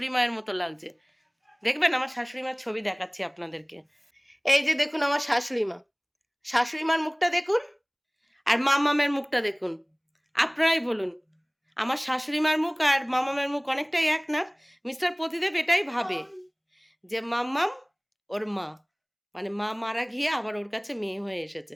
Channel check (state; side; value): identical; both; correlation 1.00